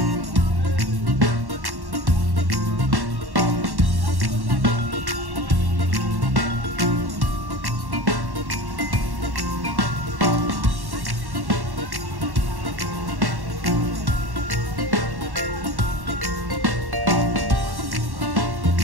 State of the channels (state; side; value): late; left; 1.1 ms